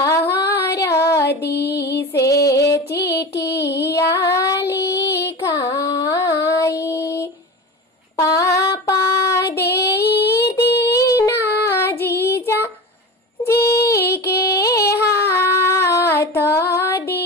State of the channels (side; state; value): both; normal; correlation 0.29